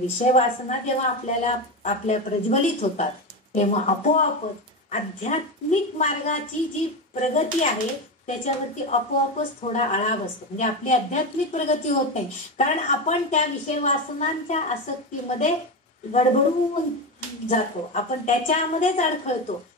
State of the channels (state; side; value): normal; both; correlation 0.17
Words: वासना जेव्हा आपल्या प्रज्वलित होतात तेव्हा आपोआपच आध्यात्मिक मार्गाची जी प्रगती आहे त्याच्यावरती आपोआपच थोडा आळा बसतो. म्हणजे आपली आध्यात्मिक प्रगती होत नाही, कारण आपण त्या विषय वासनांच्या आसक्तीमध्ये गडबडून जातो, आपण त्याच्यामध्येच अडखळतो,